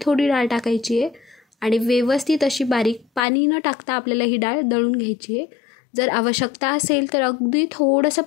थोडी डाळ टाकायची आहे आणि व्यवस्थित अशी बारीक पाणी न टाकता आपल्याला ही डाळ दळून घ्यायची आहे. जर आवश्यकता असेल तर अगदी थोडंसं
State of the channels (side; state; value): right; drops out; at 3.2 s